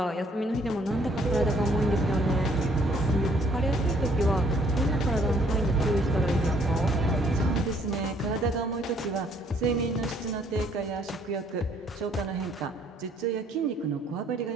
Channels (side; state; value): both; normal; correlation 0.63